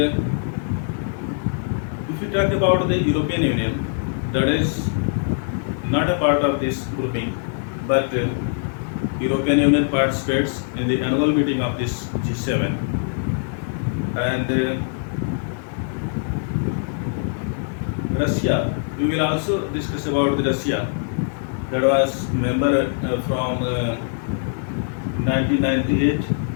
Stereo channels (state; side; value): silent; right; digital silence